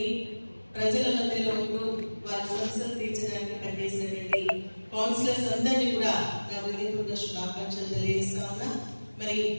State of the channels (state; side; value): inverted; both; correlation -1.00